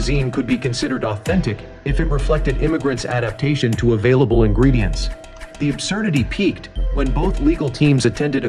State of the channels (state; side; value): identical; both; correlation 1.00